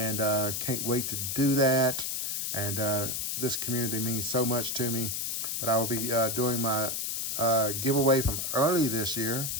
can't wait to do that. And this community means so much to me. But I will be doing my giveaway from early this year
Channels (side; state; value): left; noise; hiss, 1 dB below the sound